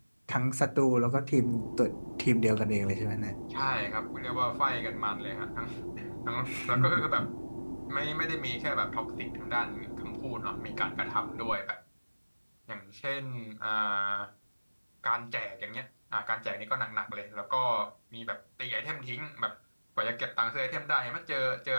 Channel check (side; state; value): both; inverted; correlation -1.00